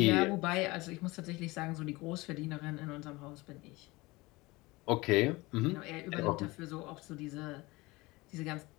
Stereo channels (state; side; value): quieter; right; 22.3 dB